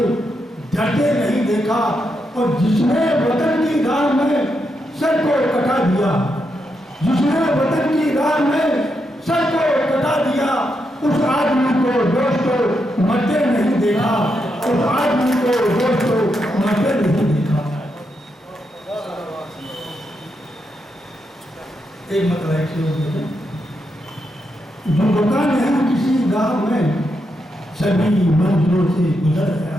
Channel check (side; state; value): both; normal; correlation 0.83